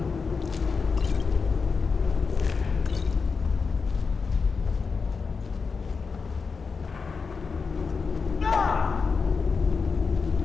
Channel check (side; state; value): right; quieter; 5.0 dB